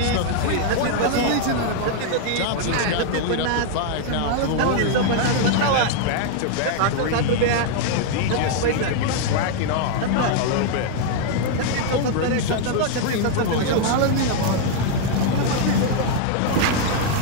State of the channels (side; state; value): both; different; correlation 0.00